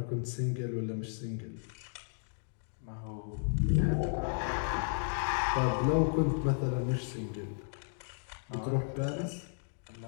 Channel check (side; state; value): right; silent; digital silence